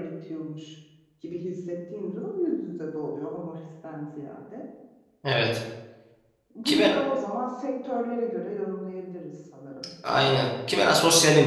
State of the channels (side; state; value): both; identical; correlation 1.00